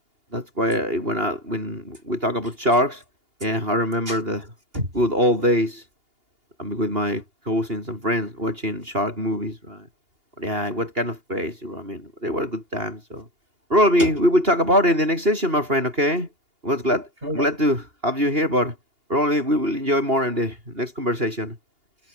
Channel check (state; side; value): late; left; 2.8 ms